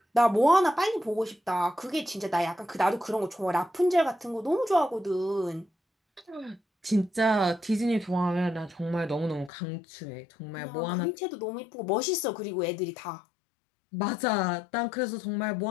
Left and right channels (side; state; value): right; drops out; at 9.5 s